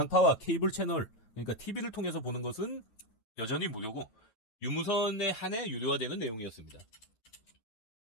케이블 채널, 그러니까 TV를 통해서 보는 것은 여전히 무료고 유무선에 한해 유료화되는 내용이었습니다.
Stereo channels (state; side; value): late; right; 9.3 ms